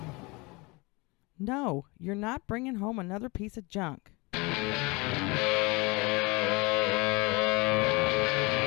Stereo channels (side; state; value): right; quieter; 25.9 dB